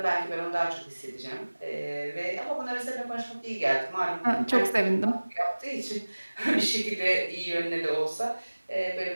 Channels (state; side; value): inverted; both; correlation -1.00